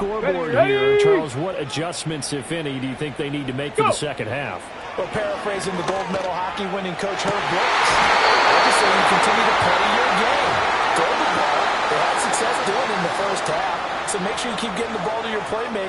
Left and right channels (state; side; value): identical; both; correlation 1.00